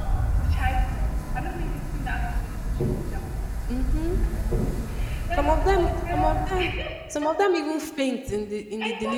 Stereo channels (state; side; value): identical; both; correlation 1.00